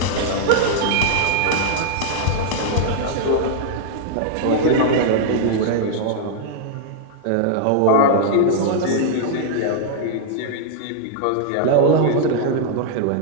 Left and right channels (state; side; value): different; both; correlation -0.01